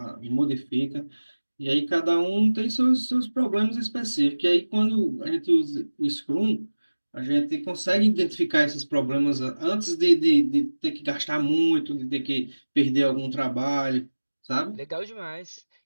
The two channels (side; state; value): both; inverted; correlation -1.00